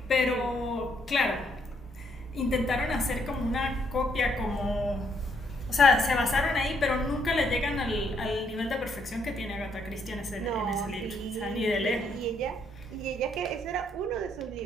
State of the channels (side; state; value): both; normal; correlation 0.72